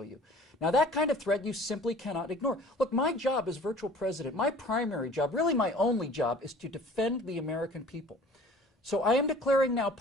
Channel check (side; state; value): both; normal; correlation 0.49